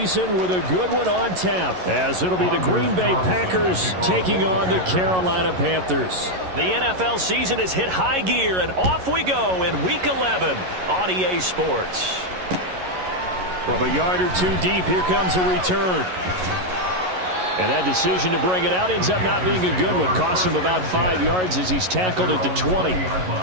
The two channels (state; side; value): late; left; 11 ms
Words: with a good one on tap, as it'll be the Green Bay Packers taking on the Carolina Panthers. The NFL season has hit high gear, and off we go in Week 11 on EA Sports. From a yard or two deep, here comes a return. And that decision to bring it out ends up not being a good one. Costs him about 5 yards as he's tackled at the 20.